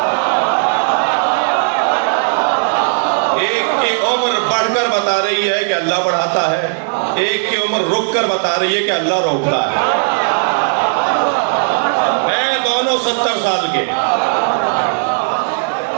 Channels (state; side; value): silent; left; 69 dB below the other